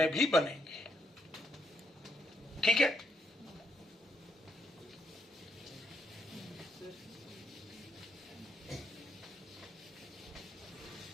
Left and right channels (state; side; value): normal; both; correlation 0.76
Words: भी बनेंगे। ठीक है।